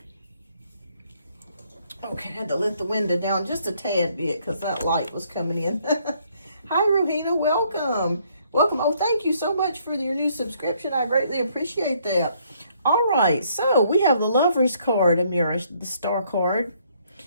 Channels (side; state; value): both; inverted; correlation -0.67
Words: Okay, had to let the window down just a tad bit because that light was coming in. Hi, Rohina. Welcome. Welcome. Oh, thank you so much for your new subscription. I greatly appreciate that. All right. So we have the Lover's card, Amira, the Star card,